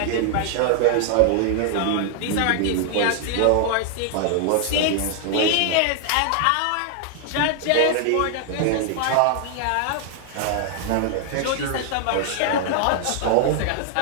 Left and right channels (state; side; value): different; both; correlation 0.00